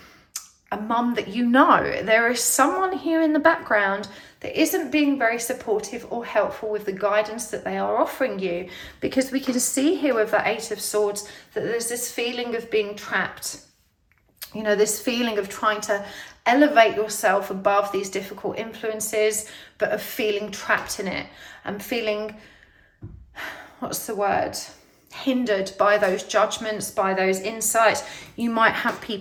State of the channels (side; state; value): both; identical; correlation 1.00